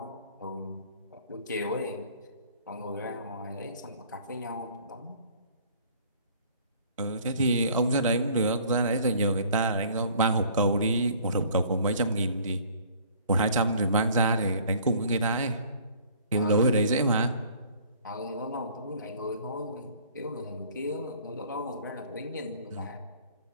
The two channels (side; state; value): both; inverted; correlation -0.54